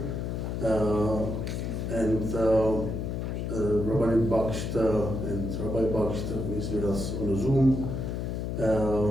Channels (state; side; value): noise; left; hum, 3 dB below the sound